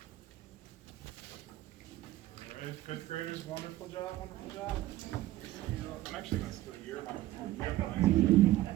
All right, 5th graders, wonderful job, wonderful job. I'm actually gonna steal your microphone. You have the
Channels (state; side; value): quieter; left; 15.6 dB